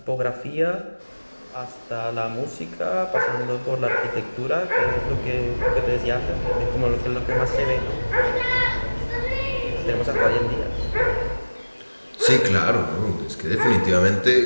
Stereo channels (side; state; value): both; inverted; correlation -1.00